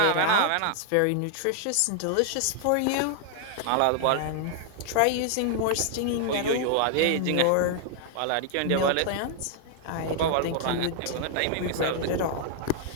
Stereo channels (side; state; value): both; different; correlation 0.00